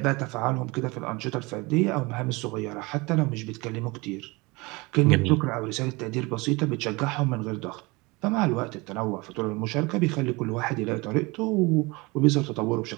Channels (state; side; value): quieter; left; 24.9 dB